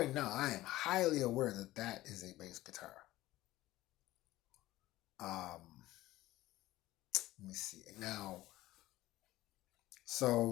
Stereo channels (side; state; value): right; quieter; 16.5 dB